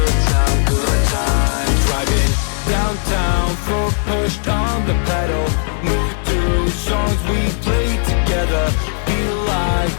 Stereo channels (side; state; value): right; silent; 58 dB below the other